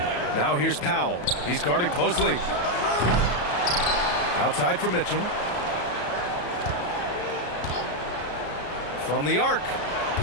Now here's Powell. He's guarded closely. Outside for Mitchell. From the arc.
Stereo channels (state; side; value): late; right; 34 ms